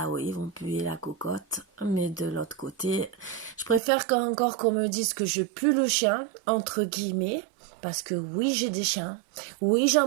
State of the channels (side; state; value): left; drops out; at 3.8 s